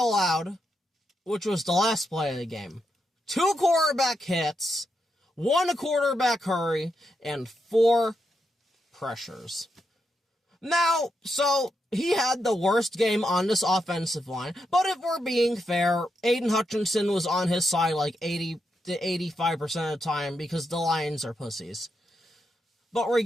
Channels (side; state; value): both; normal; correlation 0.83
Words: which was the last play of the game. 2 quarterback hits, 1 quarterback hurry, and 4 pressures. Now, so he had the worst game on this offensive line, but if we're being fair, Aiden Hutchinson was on his side like 80 to 85% of the time because the Lions are pussies. But